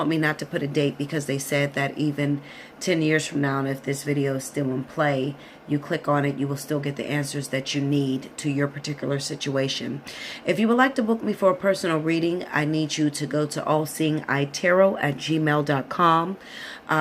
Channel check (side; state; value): both; identical; correlation 1.00